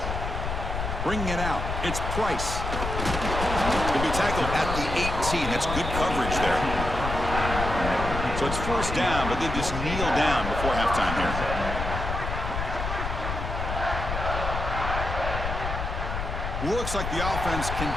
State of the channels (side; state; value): left; noise; rumble, 4 dB below the sound